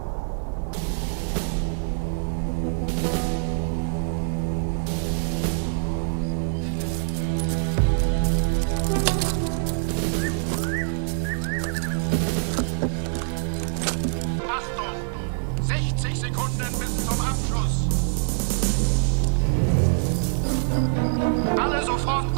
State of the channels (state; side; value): silent; left; digital silence